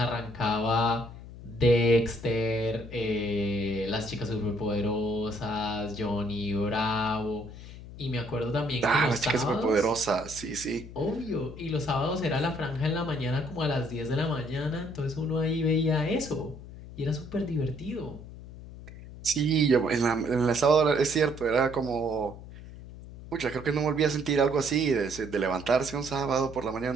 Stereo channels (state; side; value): noise; left; hum, 14 dB below the sound